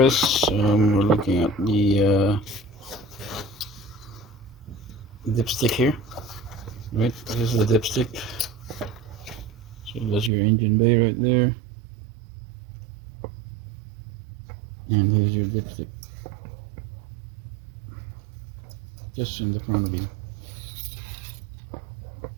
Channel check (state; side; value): drops out; left; at 10.3 s